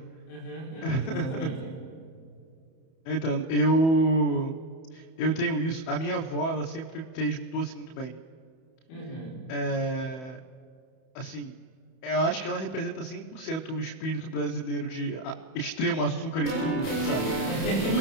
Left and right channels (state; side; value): late; right; 31 ms